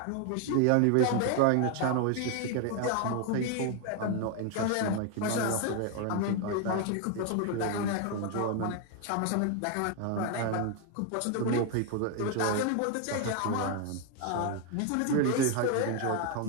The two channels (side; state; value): both; different; correlation 0.01